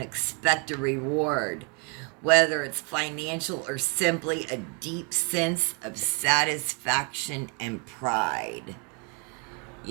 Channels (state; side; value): quieter; left; 35.6 dB